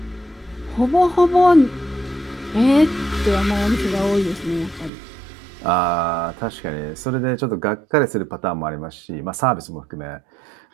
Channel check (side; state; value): left; drops out; at 4.9 s